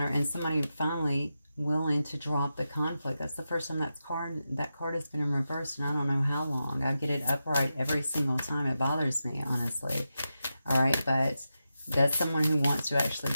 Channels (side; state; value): both; inverted; correlation -0.90